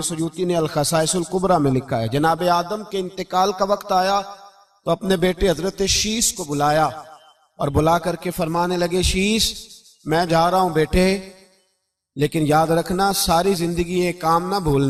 سیوطی نے الخصائص الکبریٰ میں لکھا ہے، جناب آدم کے انتقال کا وقت آیا تو اپنے بیٹے حضرت شیس کو بلایا اور بلا کر کے فرمانے لگے، شیس میں جا رہا ہوں بیٹے، لیکن یاد رکھنا ساری زندگی یہ کام نہ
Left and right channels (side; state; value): both; identical; correlation 1.00